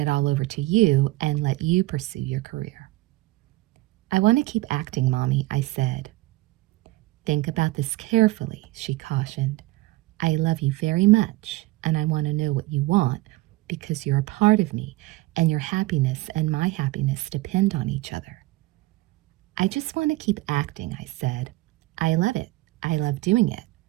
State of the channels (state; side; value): quieter; left; 19.8 dB